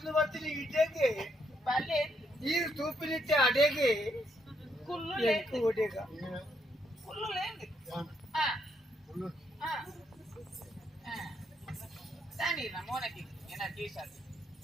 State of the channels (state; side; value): normal; both; correlation 0.75